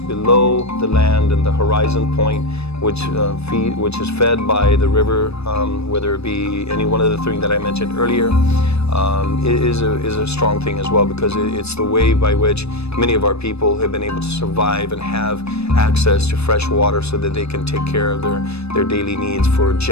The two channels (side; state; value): right; late; 0.79 ms